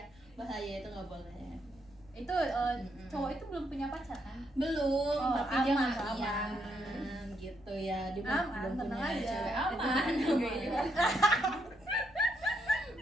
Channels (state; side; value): noise; left; rumble, 27 dB below the sound